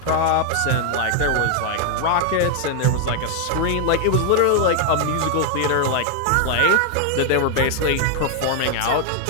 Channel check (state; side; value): different; both; correlation 0.00